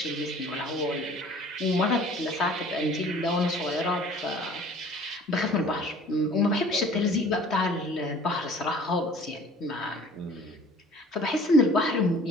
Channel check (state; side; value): normal; both; correlation 0.49